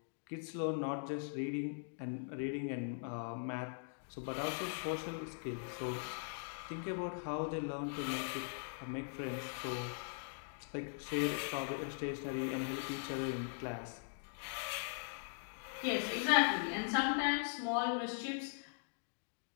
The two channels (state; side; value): silent; right; digital silence